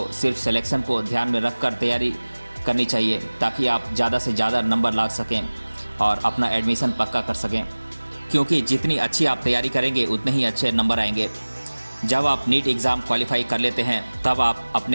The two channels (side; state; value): both; inverted; correlation -1.00